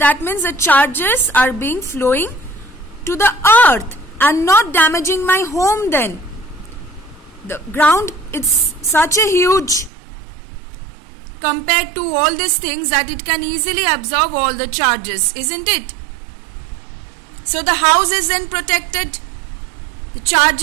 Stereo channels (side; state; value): left; drops out; at 9.9 s